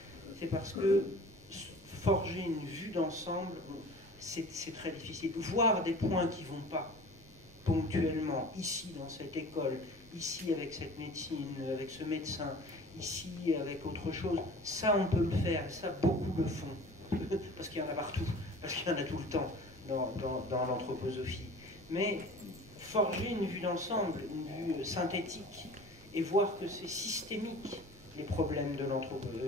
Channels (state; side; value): normal; both; correlation 0.42